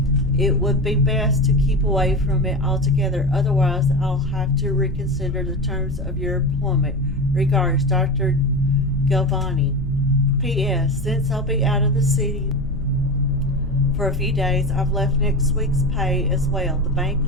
it would be best to keep away from it altogether. Otherwise, I'll have to reconsider the terms of your employment. Regards, Dr. Galvani. P.S. Since I'll be out of the city for a few days, I've left next week's pay as well. The bank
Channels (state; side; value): normal; both; correlation 0.23